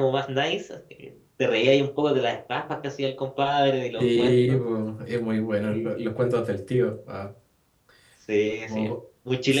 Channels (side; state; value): both; identical; correlation 1.00